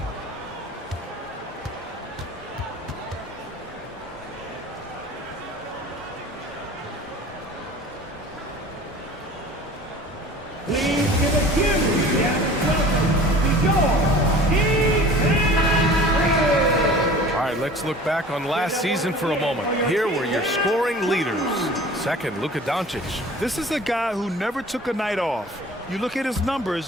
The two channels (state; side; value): normal; both; correlation 0.44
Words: Please give a huge All right, let's look back on last season for a moment. Here were your scoring leaders. Second, Luka Doncic. This is a guy who never took a night off. You look at his